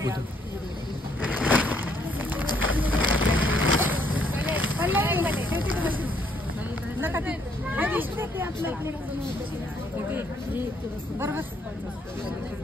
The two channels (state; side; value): normal; both; correlation 0.69